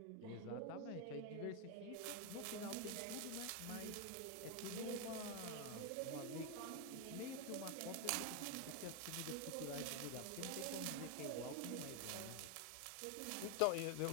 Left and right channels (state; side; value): different; both; correlation 0.01